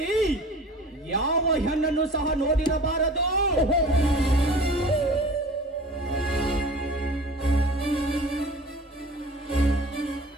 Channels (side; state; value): both; normal; correlation 0.42